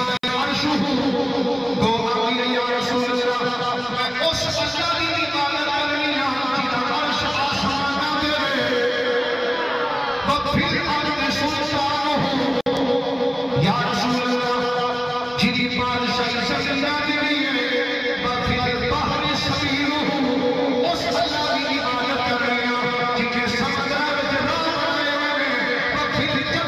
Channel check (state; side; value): identical; both; correlation 1.00